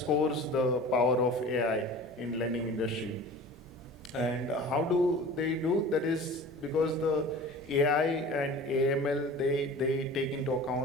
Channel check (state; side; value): normal; both; correlation 0.39